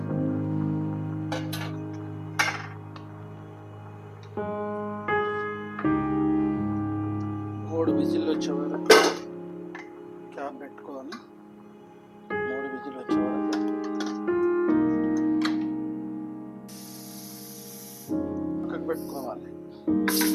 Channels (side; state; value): both; identical; correlation 1.00